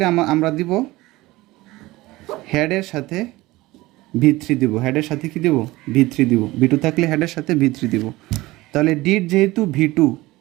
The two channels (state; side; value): quieter; left; 19.3 dB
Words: আমরা দিব হেডের সাথে V3 দিব, হেডের সাথে কি দিব, V3 দিব। V2 থাকলে হেডের সাথে V3 দিব। তাহলে ডিড যেহেতু V2,